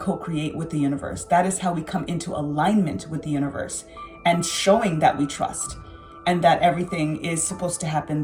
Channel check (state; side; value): identical; both; correlation 1.00